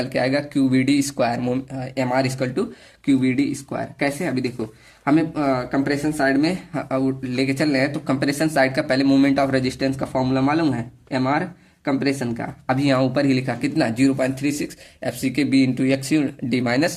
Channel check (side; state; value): both; identical; correlation 1.00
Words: के आएगा Q V D square, M R equal to Q V D square. कैसे, अभी देखो हमें कंप्रेशन साइड में लेके चल रहे हैं, तो कंप्रेशन साइड का पहले मोमेंट ऑफ रेजिस्टेंस का फॉर्मूला मालूम है, एम आर कंप्रेशन का। अभी यहाँ ऊपर ही लिखा कितना 0.36 F C K B into X U D